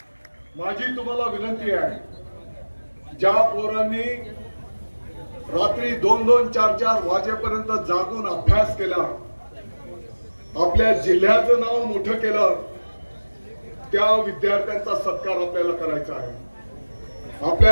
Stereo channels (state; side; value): inverted; both; correlation -1.00